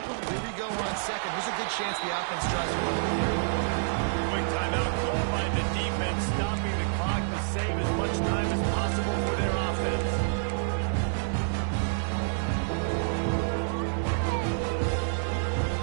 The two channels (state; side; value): silent; left; 59 dB below the other